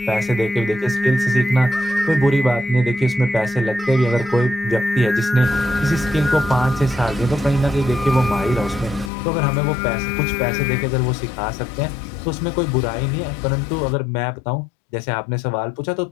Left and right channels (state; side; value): drops out; right; at 9.1 s